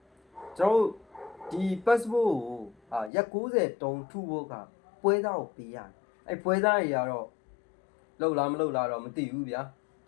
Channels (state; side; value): drops out; right; at 3.1 s